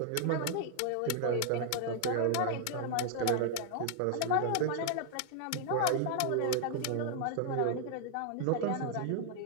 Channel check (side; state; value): both; different; correlation 0.00